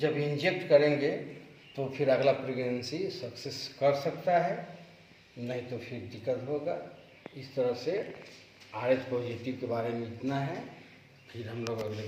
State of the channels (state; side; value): identical; both; correlation 1.00